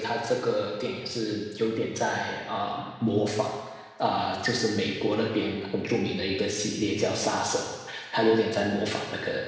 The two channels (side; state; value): both; identical; correlation 1.00